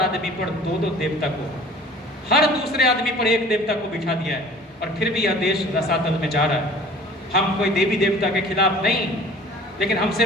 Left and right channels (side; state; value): both; normal; correlation 0.47